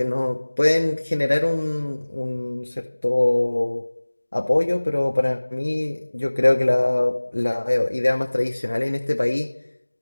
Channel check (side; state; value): both; inverted; correlation -1.00